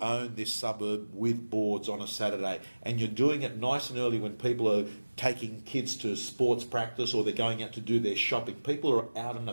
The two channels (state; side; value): inverted; both; correlation -1.00